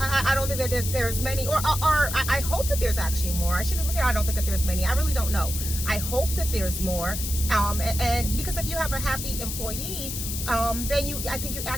don't think that there's many, or I hope that there's actually more. I shouldn't even say I don't think that there's many. I really don't know. I hope that there's more. And because if you have a happy employee, then I think you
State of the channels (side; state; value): left; noise; hiss, 5 dB below the sound